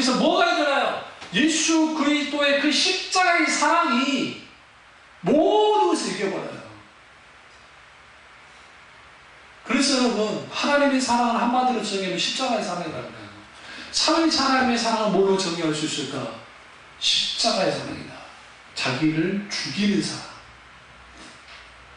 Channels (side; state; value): both; identical; correlation 1.00